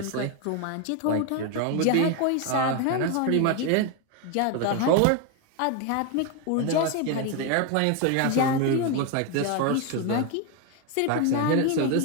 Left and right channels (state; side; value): different; both; correlation 0.01